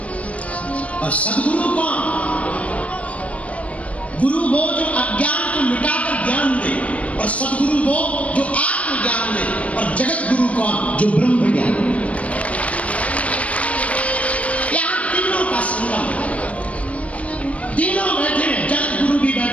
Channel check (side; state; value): right; late; 0.065 ms